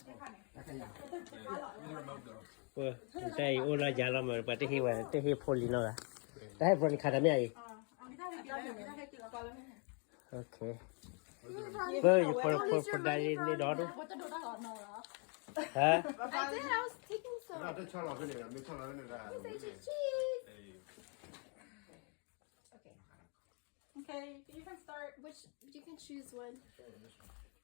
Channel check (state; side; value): quieter; right; 37.0 dB